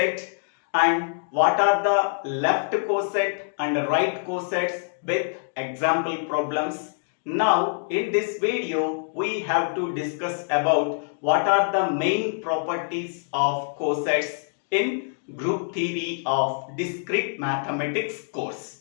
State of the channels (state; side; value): silent; right; digital silence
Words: and what are the left coset and right cosets with example problems. Now, in this video, we have to discuss about what are the main properties of cosets in Group Theory of Discrete Mathematics